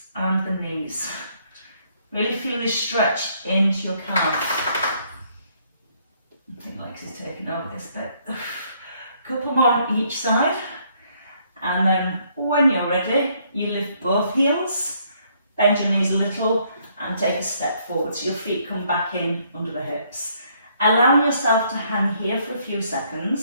and the knees. Really feel this stretch into your calf. I think Lex is taking over this bit. A couple more on each side. And then when you're ready, you lift both heels, bend your knees a little and take a step forward so your feet come back in under the hips. Allowing yourself to hang here for a few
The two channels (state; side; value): inverted; both; correlation -0.68